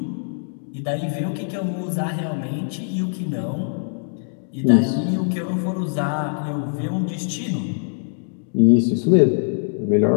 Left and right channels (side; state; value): right; silent; digital silence